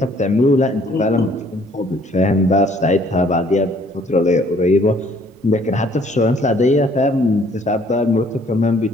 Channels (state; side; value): normal; both; correlation 0.61